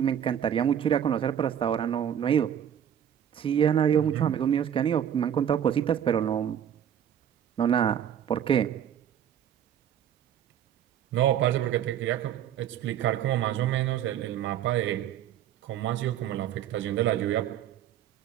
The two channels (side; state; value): left; quieter; 9.6 dB